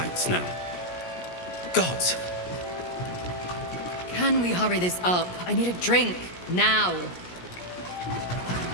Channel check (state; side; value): late; right; 17 ms